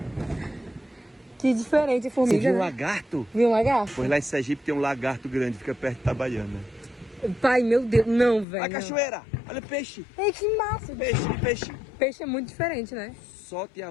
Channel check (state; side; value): drops out; right; at 8.5 s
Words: Que diferente a formiga, Você viu um né? lagarto? Viu um lagarto? Pois lá em Sergipe tem um lagarto grande, fica perto de Itabaiana. Pai, meu Deus. Não, velho. Olha a cachoeira, olha o peixe. Ei, que massa. Peixe. Peixe é muito diferente, né? Solte a